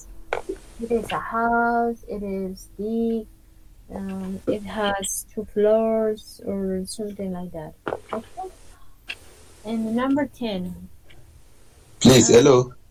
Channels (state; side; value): identical; both; correlation 1.00